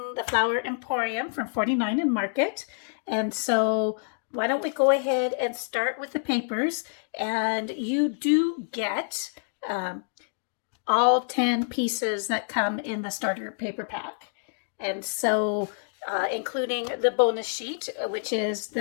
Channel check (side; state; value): right; silent; digital silence